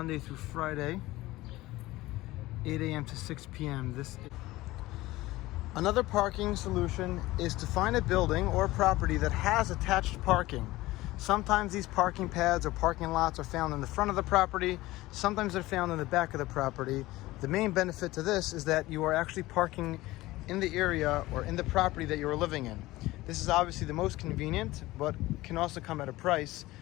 through Friday, 8 a.m. to 6 p.m. Another parking solution is to find a building or property that has attached parking. Sometimes these parking pads or parking lots are found in the front of the property. Sometimes they're found in the back of the property. The main benefit to this is that you are actually parking in the area or in the property that you are living in. This is obviously the most convenient, but can also come at a price.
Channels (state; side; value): quieter; right; 18.4 dB